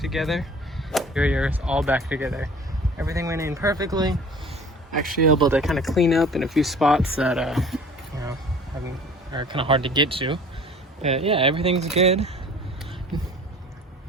Interior is all back together. Everything went in perfectly. Actually able to kind of clean up in a few spots that are kind of hard to get to. But yeah, everything's good.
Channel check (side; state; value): both; normal; correlation 0.46